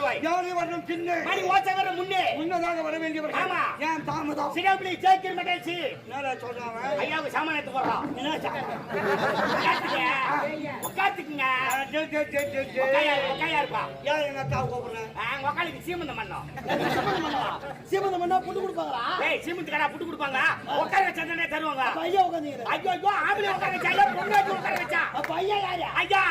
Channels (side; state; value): both; identical; correlation 1.00